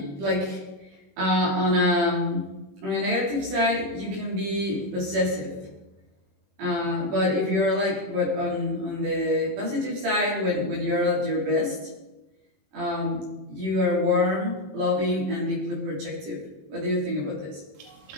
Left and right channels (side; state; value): left; late; 20 ms